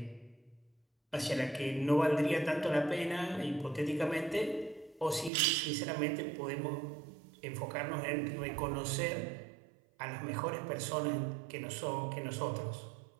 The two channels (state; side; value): drops out; left; at 5.3 s